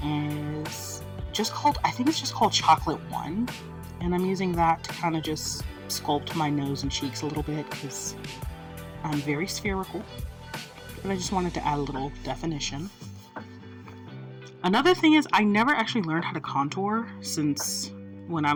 is just called, I think it's just called Chocolate 1, and I'm using that to kind of just sculpt my nose and cheeks a little bit because I'm very spherical, but I just wanted to add a little definition. Another thing is I never actually learned how to contour since when I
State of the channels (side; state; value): both; identical; correlation 1.00